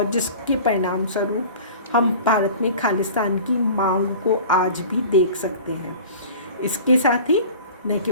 जिसके परिणाम स्वरूप हम भारत में खालिस्तान की मांग को आज भी देख सकते हैं। इसके साथ ही न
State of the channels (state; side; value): inverted; both; correlation -0.41